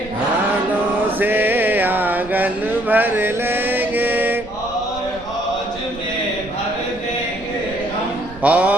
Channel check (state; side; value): noise; right; rumble, 17 dB below the sound